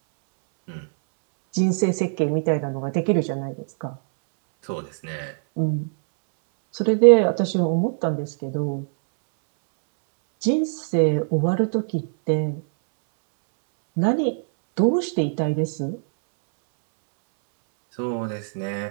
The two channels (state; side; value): silent; left; 64 dB below the other